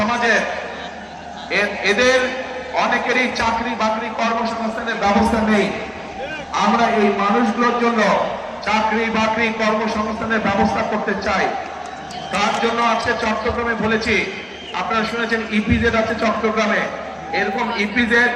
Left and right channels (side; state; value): both; identical; correlation 1.00